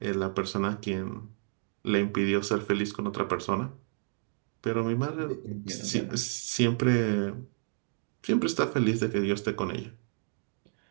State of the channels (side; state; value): left; silent; 57 dB below the other